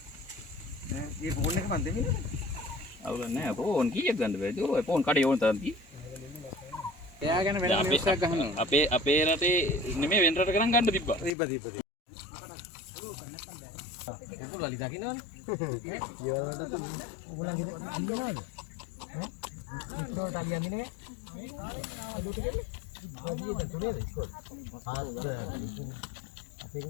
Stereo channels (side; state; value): right; drops out; at 11.3 s